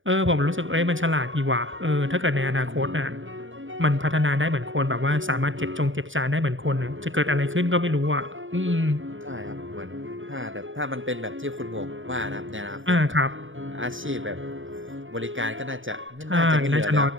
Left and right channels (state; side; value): late; left; 0.57 ms